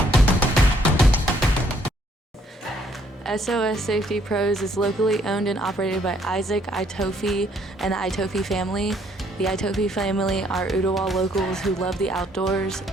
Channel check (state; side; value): normal; both; correlation 0.66